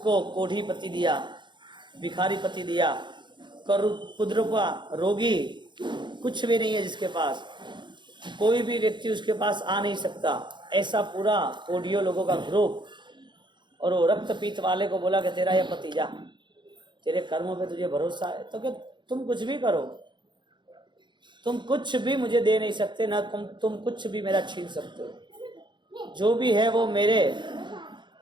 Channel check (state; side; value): late; left; 0.22 ms